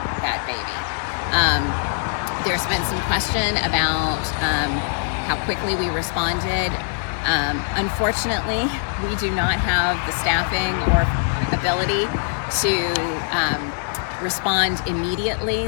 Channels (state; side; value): silent; right; digital silence